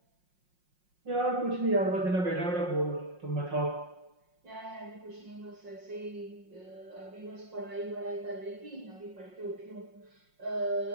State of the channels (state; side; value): late; left; 5.5 ms